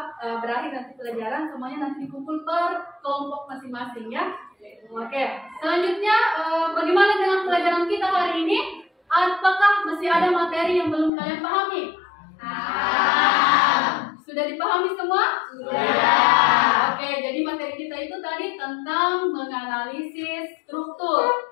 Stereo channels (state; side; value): drops out; right; at 11.1 s